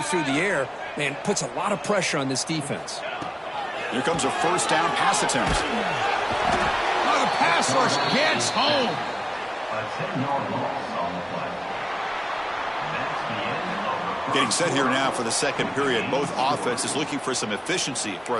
the air, man, puts a lot of pressure on this defense. Here comes a first down pass attempt. Oh, the pass rush gets home. Getting set here now for the second period. Both offenses looking for some efficiency, for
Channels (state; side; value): identical; both; correlation 1.00